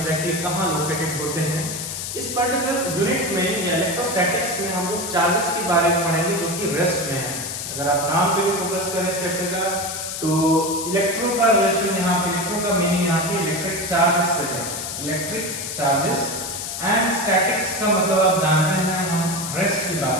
कहाँ लोकेटेड होते हैं। इस पर्टिकुलर यूनिट में या इलेक्ट्रोस्टैटिक्स में हम लोग चार्जेस के बारे में पढ़ेंगे जो कि रेस्ट में है। अगर आप नाम पे भी फोकस करें इस चैप्टर का, तो इलेक्ट्रो का रिलेशन यहाँ पे, इलेक्ट्रो का मीनिंग यहाँ पे इलेक्ट्रिक चार्जेस से है। इलेक्ट्रिक चार्जेस एंड स्टैटिक्स का मतलब आप जानते हैं हम रेस्ट की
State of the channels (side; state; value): left; noise; hiss, 6 dB below the sound